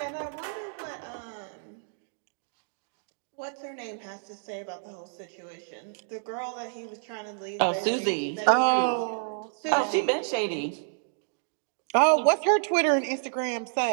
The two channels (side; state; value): left; silent; digital silence